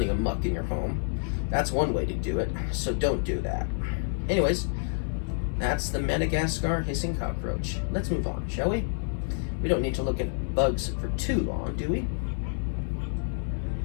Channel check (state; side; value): silent; right; digital silence